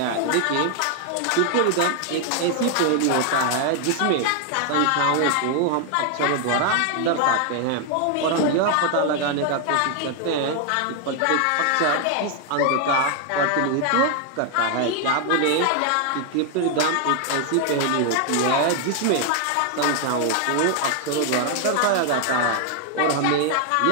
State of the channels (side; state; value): both; different; correlation 0.00